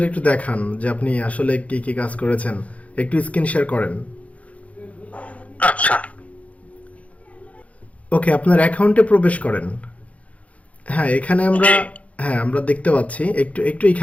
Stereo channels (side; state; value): right; late; 0.066 ms